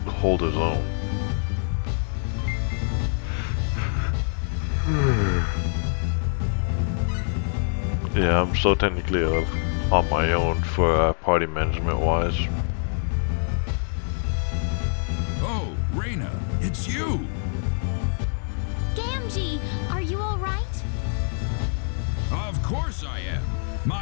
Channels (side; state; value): right; silent; digital silence